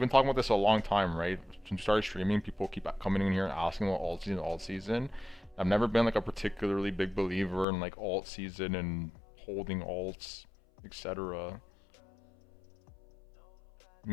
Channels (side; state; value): right; drops out; at 7.7 s